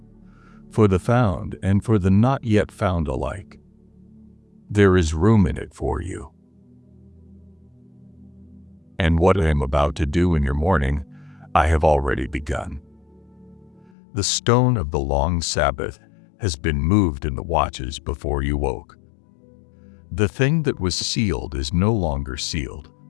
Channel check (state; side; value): drops out; right; at 13.9 s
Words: for the found and for the not yet found alike. There is room in it for you. And what I am about to do in your morning, I have already begun. The stone of the long Sabbath has been moved in the watches before you woke. The thing that was sealed is no longer sealed.